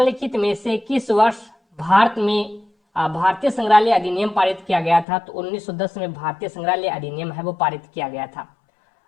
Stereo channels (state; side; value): drops out; right; at 5.1 s